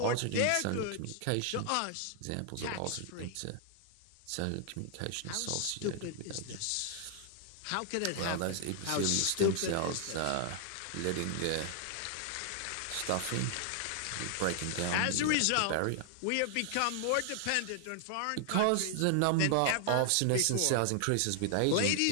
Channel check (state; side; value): different; both; correlation 0.00